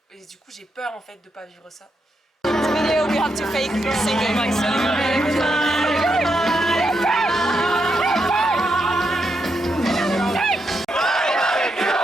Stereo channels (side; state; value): both; normal; correlation 0.82